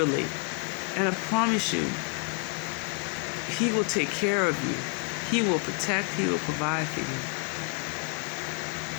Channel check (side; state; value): right; quieter; 32.5 dB